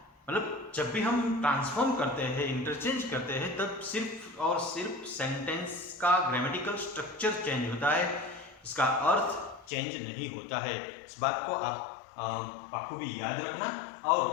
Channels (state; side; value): drops out; right; at 9.7 s